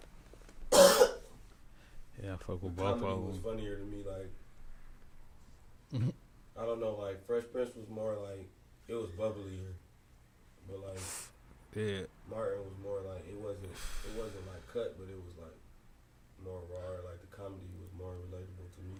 Yeah, I fuck with both of Comedy them. was funnier to me. Like, I don't know. Like Fresh Prince was more like it was bubblier, but like Yeah. Martin was more like it wasn't like cut, but it was like more raw. Like the comedy was more relatable to me.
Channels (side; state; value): both; identical; correlation 1.00